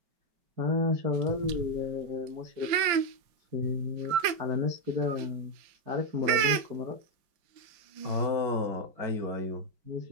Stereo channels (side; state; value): left; late; 5.1 ms